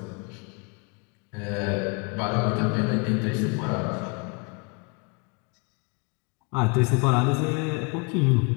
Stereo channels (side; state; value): right; quieter; 31.9 dB